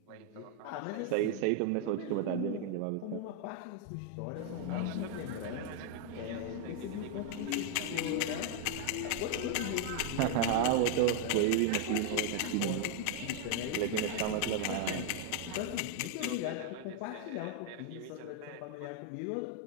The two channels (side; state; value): both; different; correlation 0.00